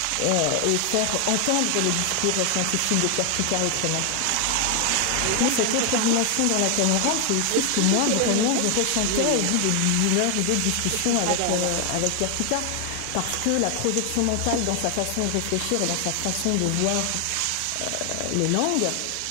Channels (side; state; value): both; different; correlation 0.00